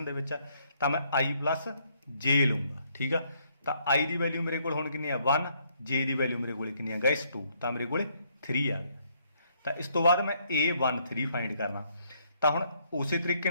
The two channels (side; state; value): both; inverted; correlation -0.70